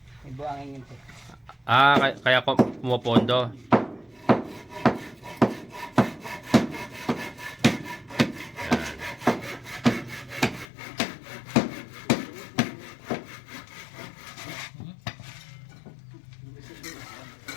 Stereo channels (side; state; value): right; drops out; at 10.7 s